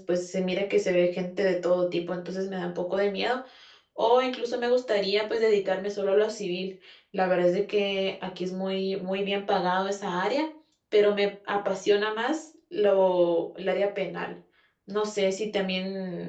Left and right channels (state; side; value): identical; both; correlation 1.00